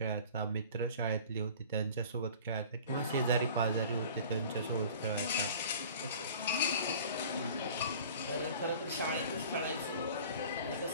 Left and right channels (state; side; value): inverted; both; correlation -0.44